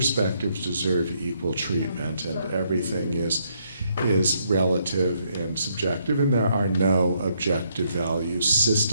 deserve equal treatment and everything is relative and subjective, and there are no objective value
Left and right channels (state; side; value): inverted; both; correlation -0.73